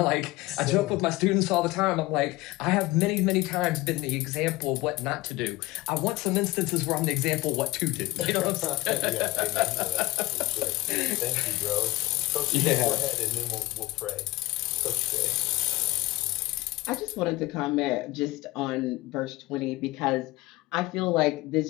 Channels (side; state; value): right; quieter; 19.9 dB